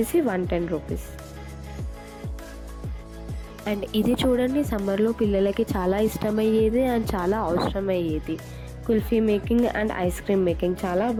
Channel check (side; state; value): both; identical; correlation 1.00